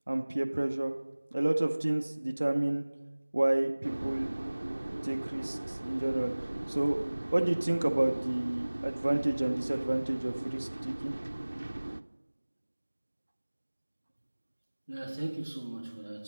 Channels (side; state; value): both; inverted; correlation -1.00